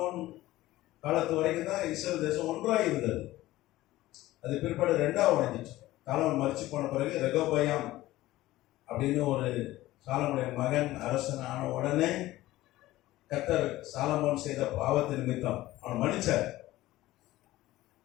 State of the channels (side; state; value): right; quieter; 16.7 dB